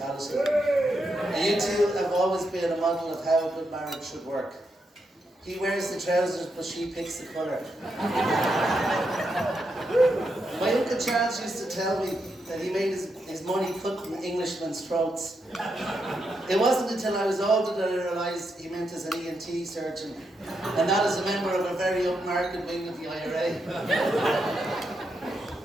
And you two have always been a model of how a good marriage should work. He wears the trousers, but she picks the colour. My Uncle Charles used to tell me that he made his money cutting Englishmen's throats. It wasn't until I was older that I realised he meant as an ENT surgeon, and not as a member of a very upmarket wing of the IRA.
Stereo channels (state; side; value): normal; both; correlation 0.82